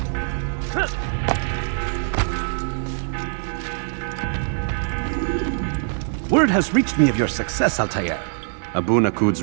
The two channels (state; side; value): silent; left; 63 dB below the other